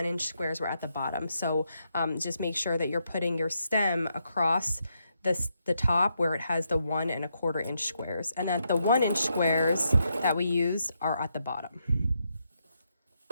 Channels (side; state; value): both; inverted; correlation -0.81